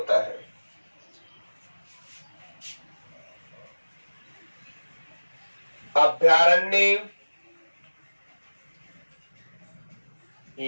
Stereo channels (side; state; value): both; inverted; correlation -1.00